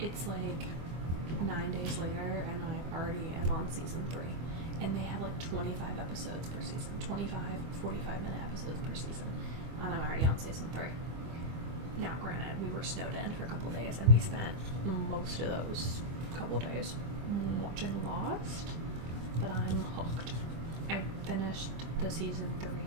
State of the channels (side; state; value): left; late; 24 ms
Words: like 9 days later, and I already am on season 3. And they have like 25 episodes per season, 25 45-minute episodes per season, and I'm already on season 3. Now, granted, we were snowed in for a couple days, and we spent most of those couple days watching Lost, but I'm hooked. I finished the season 3